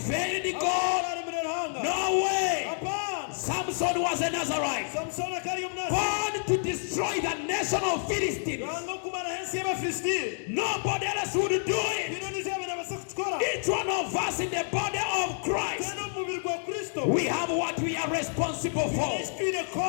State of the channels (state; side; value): silent; right; digital silence